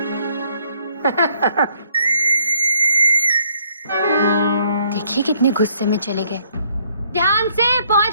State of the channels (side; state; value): both; inverted; correlation -0.67